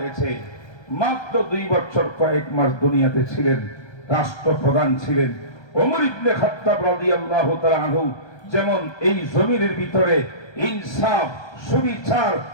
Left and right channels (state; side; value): late; right; 1.3 ms